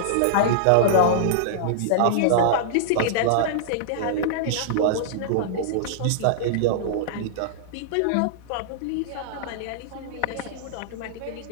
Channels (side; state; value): both; different; correlation -0.02